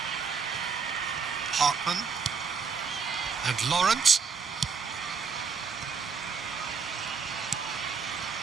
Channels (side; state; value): left; quieter; 5.6 dB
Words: Hartman. And Laurent.